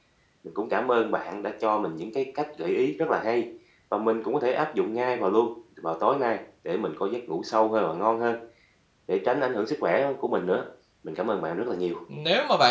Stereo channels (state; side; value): identical; both; correlation 1.00